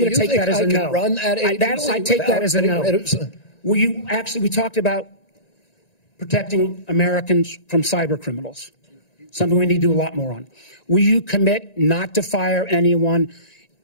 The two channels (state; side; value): late; right; 1.9 ms